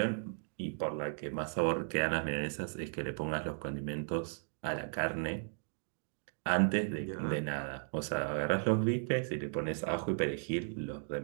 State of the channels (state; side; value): silent; left; digital silence